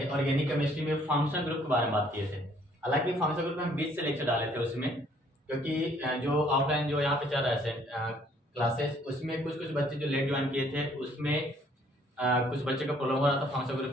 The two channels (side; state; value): both; normal; correlation 0.62